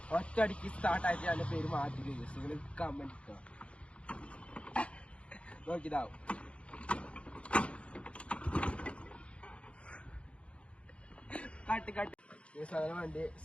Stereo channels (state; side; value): late; right; 0.060 ms